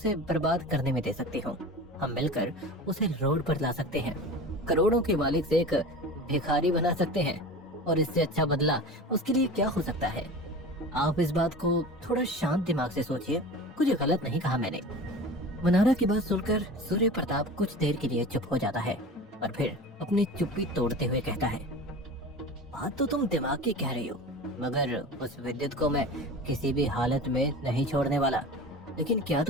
बर्बाद करने में दे सकती हूँ। हम मिलकर उसे रोड पर ला सकते हैं, करोड़ों के मालिक से एक भिखारी बना सकते हैं, और इससे अच्छा बदला उसके लिए क्या हो सकता है? आप इस बात को थोड़ा शांत दिमाग से सोचिए। कुछ गलत नहीं कहा मैंने। मनारा की बात सुनकर सूर्य प्रताप कुछ देर के लिए चुप हो जाता है और फिर अपनी चुप्पी तोड़ते हुए कहता है, बात तो तुम दिमाग की कह रही हो, मगर उस विद्युत को मैं किसी भी हालत में नहीं छोड़ने वाला। लेकिन क्या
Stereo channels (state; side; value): normal; both; correlation 0.34